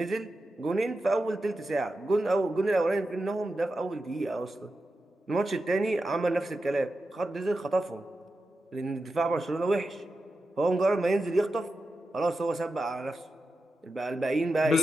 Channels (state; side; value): normal; both; correlation 0.91